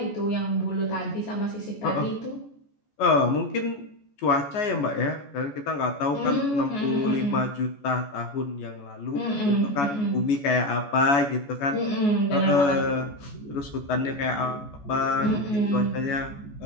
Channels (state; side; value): late; right; 14 ms